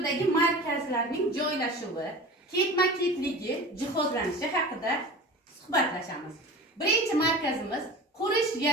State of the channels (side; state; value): both; normal; correlation 0.35